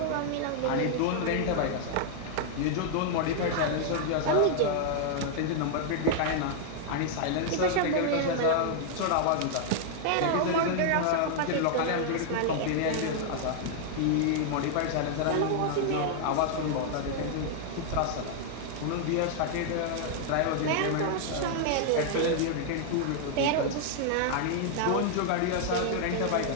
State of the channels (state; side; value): different; both; correlation -0.01